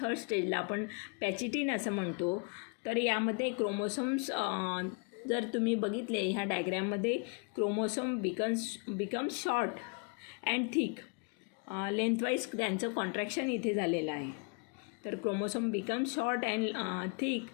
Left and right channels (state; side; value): quieter; right; 36.4 dB